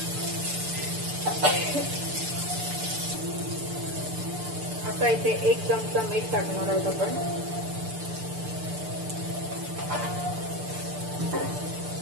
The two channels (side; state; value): left; late; 6.8 ms